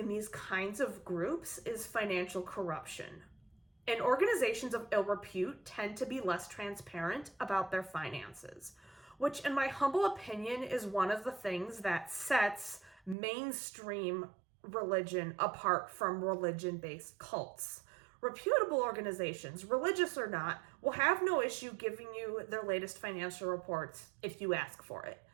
these kinds of groups is financial corruption. And organizations of ill repute tend to be less transparent about their finances, which in my humble opinion is one of the things that sets mainstream religion apart from religion-based cults. Reputable organizations, religious or not, will have no issue giving you their latest financial reports if you ask for it.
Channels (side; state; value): left; drops out; at 13.2 s